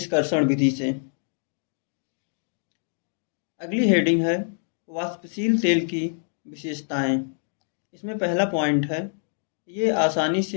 विधि से। अगली हेडिंग है वाष्पशील तेल की विशेषताएं। इसमें पहला पॉइंट है, ये आसानी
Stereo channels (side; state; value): right; silent; digital silence